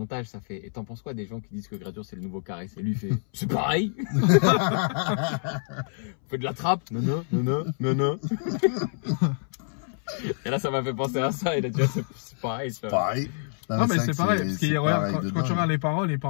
ça fait et t'en penses quoi des gens qui disent que Gradure c'est le nouveau Caris? Et lui il fait c'est pareil. On fait de la trappe. Non. Et là, ça m'a fait penser à ça. Il a dit c'est pareil. C'est Pareil. Non, mais vrai c'est que pareil. Parce que regarde, pareil de quand tu dingue. regardes les paroles, il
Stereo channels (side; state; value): right; silent; 60 dB below the other